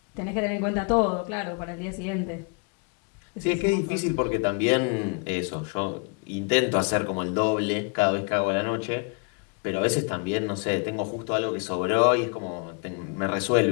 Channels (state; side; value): quieter; right; 36.0 dB